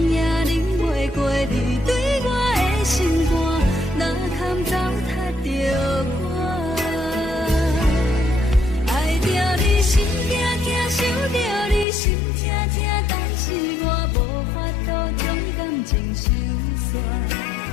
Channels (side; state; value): right; drops out; at 11.9 s